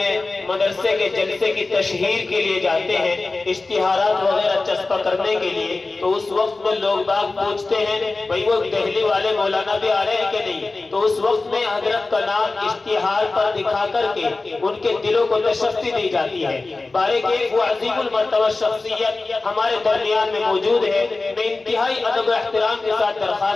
مدرسے کے جلسے کی تشہیر کے لیے جاتے ہیں، اشتہارات وغیرہ چسپاں کرنے کے لیے، تو اس وقت میں لوگ باگ پوچھتے ہیں بھئی وہ دہلی والے مولانا بھی آ رہے ہیں کہ نہیں؟ تو اس وقت میں حضرت کا نام اشتہار پر دکھا کر کے ان کے دلوں کو تشفی دی جاتی ہے۔ بارے کہ وہ عظیم المرتبہ شخصیت ہمارے درمیان میں موجود ہے۔ میں انتہائی ادب و احترام کے ساتھ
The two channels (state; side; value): quieter; right; 3.5 dB